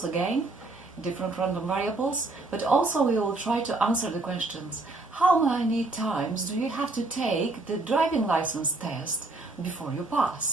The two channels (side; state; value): left; quieter; 3.2 dB